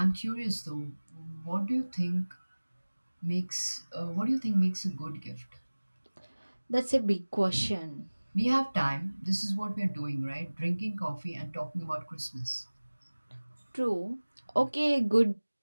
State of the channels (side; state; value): both; inverted; correlation -1.00